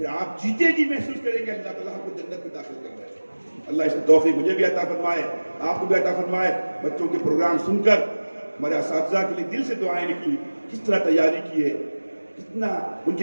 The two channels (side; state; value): both; inverted; correlation -1.00